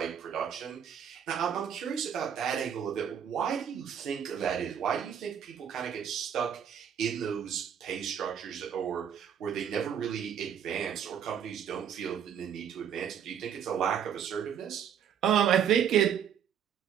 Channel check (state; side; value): quieter; left; 8.5 dB